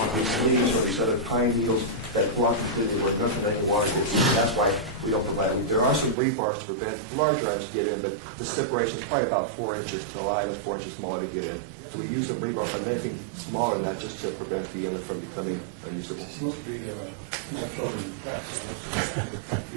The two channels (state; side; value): drops out; left; at 6.2 s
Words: leaves or these other pine needles that block completely where nothing any water gets in. That's why we don't provide it. There are some weight bars to prevent larger items to get in, but the separation is probably about 4 inches to allow it 4 inches smaller to get in. So we use some rebar by anything smaller than that just to prevent the inlet from becoming unusable. It's supposed to be small children in class, so they're trying to